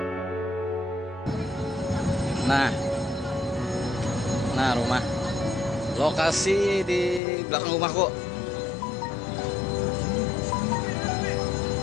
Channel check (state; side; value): drops out; right; at 7.2 s